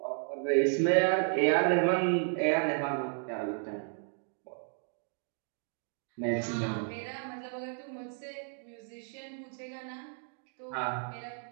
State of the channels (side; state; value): left; silent; 56 dB below the other